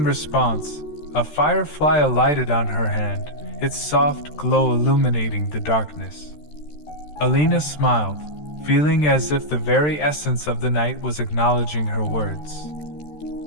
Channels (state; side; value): late; right; 13 ms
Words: response, a firefly alighted on her hand, its soft glow illuminating the darkness. Alina smiled, feeling as if the very essence of the night was acknowledging her words.